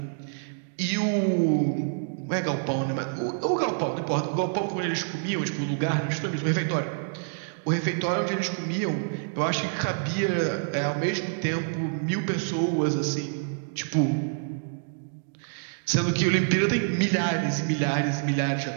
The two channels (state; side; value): silent; left; digital silence